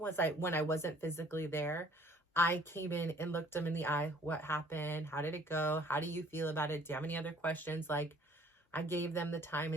I wasn't physically there, I came in and looked them in the eye. What happened? How did it go? How do you feel about it? Do you have any other questions? Like, I gave them the time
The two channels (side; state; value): both; normal; correlation 0.56